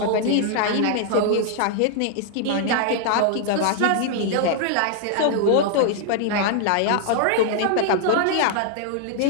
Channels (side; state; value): both; different; correlation -0.01